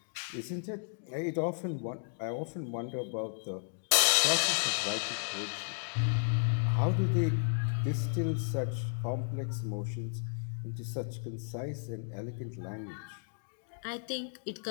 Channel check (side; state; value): right; silent; digital silence